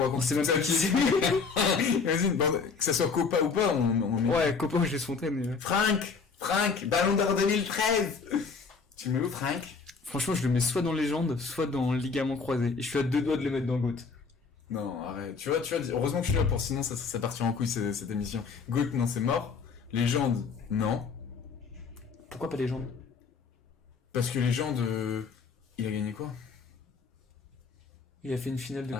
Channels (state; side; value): quieter; right; 5.1 dB